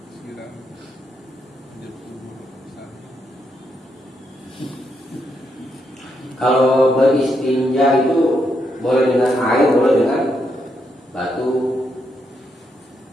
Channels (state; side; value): normal; both; correlation 0.79